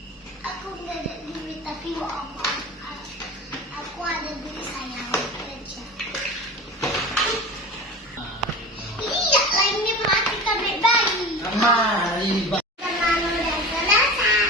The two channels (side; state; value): both; normal; correlation 0.33